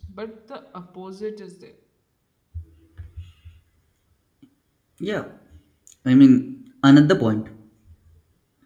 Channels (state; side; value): identical; both; correlation 1.00